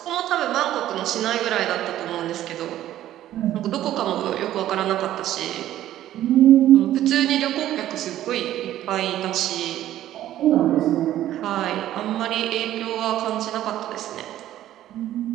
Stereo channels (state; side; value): quieter; left; 13.0 dB